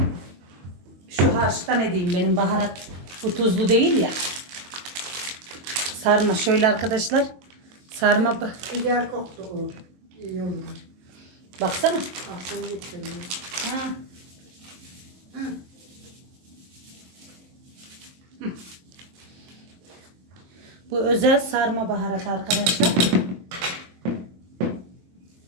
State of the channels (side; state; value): left; late; 22 ms